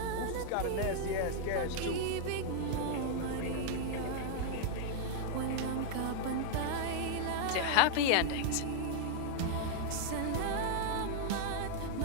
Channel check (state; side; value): different; both; correlation -0.01